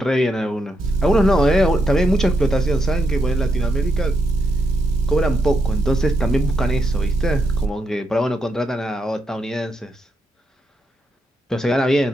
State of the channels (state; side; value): normal; both; correlation 0.81